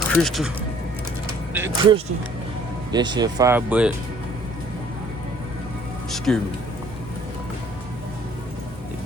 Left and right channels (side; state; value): both; normal; correlation 0.57